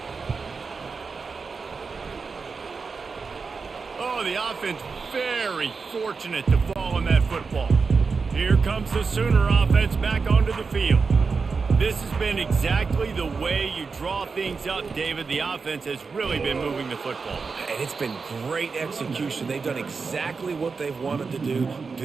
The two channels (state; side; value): quieter; left; 4.8 dB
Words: Oh, the offense very fortunate to fall on that football. Here comes the Sooner offense back onto the field. This has been exactly the way you draw things up, David. The offense has really been moving the football. And it's been great execution. They've done exactly what they've wanted to do.